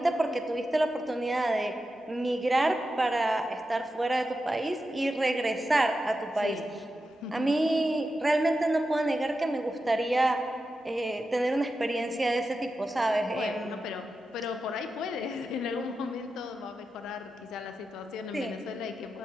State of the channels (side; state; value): both; normal; correlation 0.90